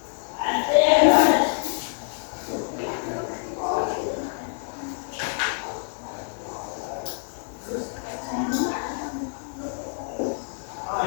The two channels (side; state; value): right; silent; 57 dB below the other